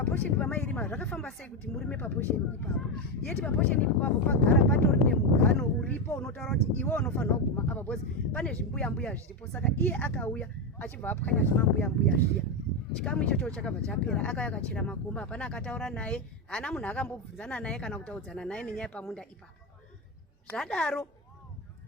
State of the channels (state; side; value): normal; both; correlation 0.10